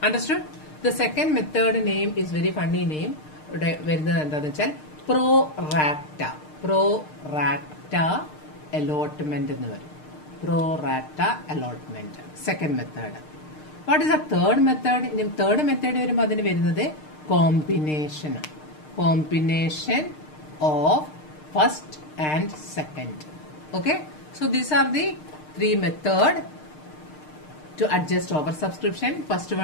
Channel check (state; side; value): late; right; 6.6 ms